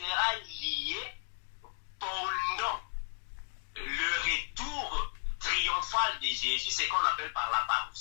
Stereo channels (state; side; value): silent; right; digital silence